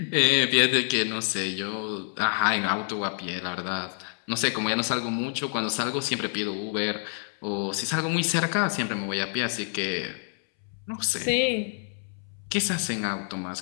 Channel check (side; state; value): right; silent; 60 dB below the other